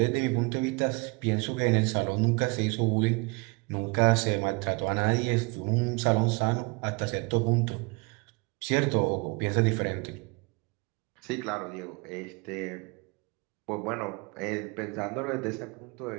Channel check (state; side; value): quieter; left; 29.4 dB